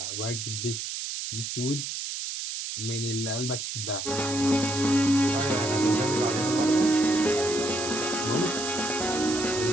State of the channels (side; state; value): right; noise; hiss, 5 dB below the sound